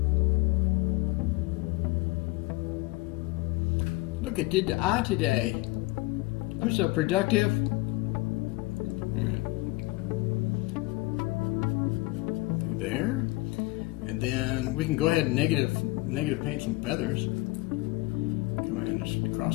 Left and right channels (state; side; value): quieter; right; 21.7 dB